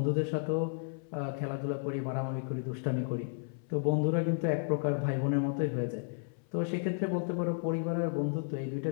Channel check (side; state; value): right; silent; 56 dB below the other